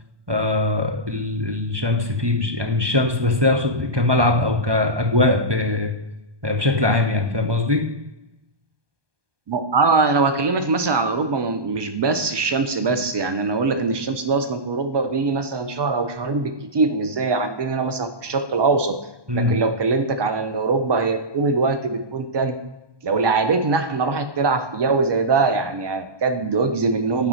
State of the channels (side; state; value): left; late; 1.2 ms